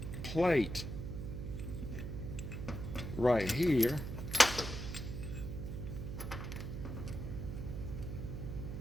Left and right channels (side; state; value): right; noise; hum, 5 dB below the sound